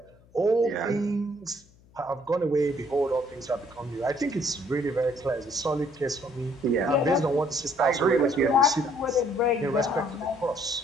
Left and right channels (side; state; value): left; noise; hum, 28 dB below the sound